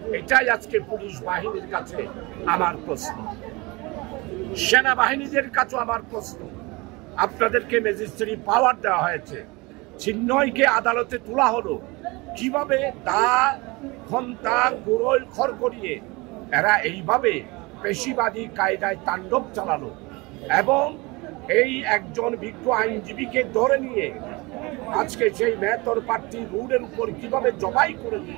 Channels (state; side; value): quieter; left; 24.8 dB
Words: এটাই আজকে পুলিশ বাহিনীর কাছে আমার প্রশ্ন, সেনাবাহিনীদের কাছে আমার প্রশ্ন। আপনাদেরকে ম্যাজিস্ট্রেট পাওয়ার দেওয়া হয়েছে, চিহ্নয়কে আদালতে তোলা হলো, কিভাবে দা ঘন্টা গুড়োল খড় করিয়ে এরা এইভাবে পেশিবাদী কায়দায় তাণ্ডব চালালো এবং এই একজন বিজ্ঞ আইনজীবীকে ধরে নিয়ে আজকে সেই মেহতর প্রার্থী রোডের উপর কিভাবে জবাই করে